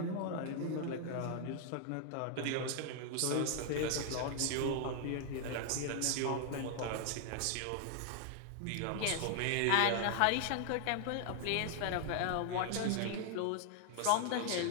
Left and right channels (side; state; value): both; different; correlation 0.00